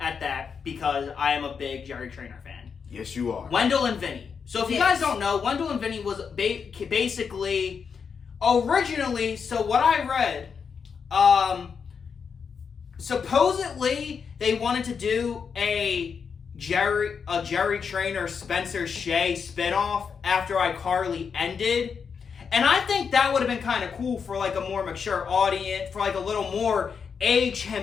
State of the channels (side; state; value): right; quieter; 6.2 dB